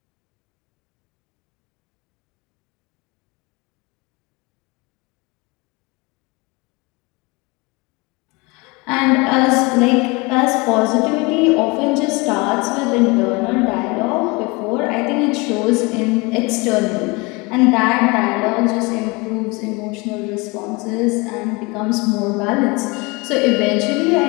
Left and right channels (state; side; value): quieter; right; 26.3 dB